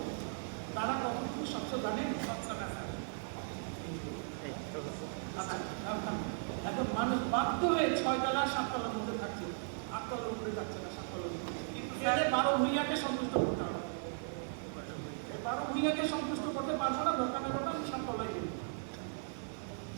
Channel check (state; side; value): silent; left; 53 dB below the other